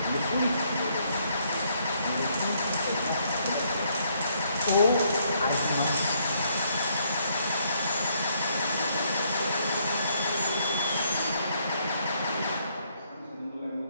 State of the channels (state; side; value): inverted; both; correlation -0.71